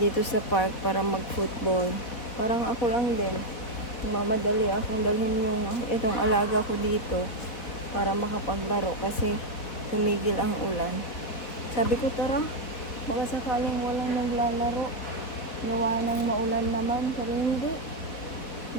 park para mag-football. Parang ako lang din. Mamadali akong dalhin itong alaga ko dito para makapaglaro kasi tumigil ang ulan. Sabi ko, tara, baka sakaling walang naglalaro. Gawa ng maulan naman. Pero hindi.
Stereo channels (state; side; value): late; right; 4.1 ms